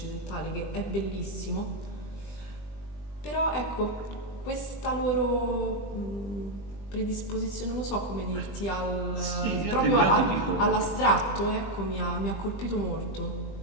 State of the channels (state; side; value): late; right; 20 ms